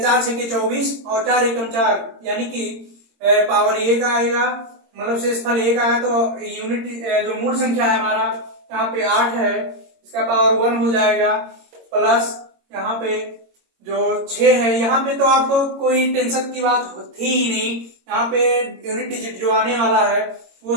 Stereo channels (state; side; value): late; left; 22 ms